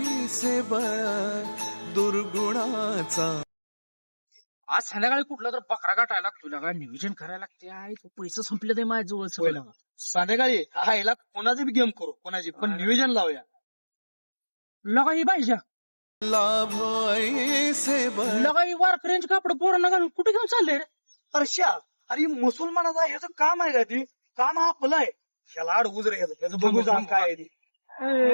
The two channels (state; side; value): inverted; both; correlation -1.00